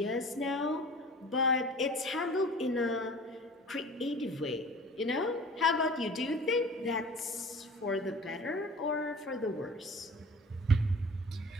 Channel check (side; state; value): both; normal; correlation 0.43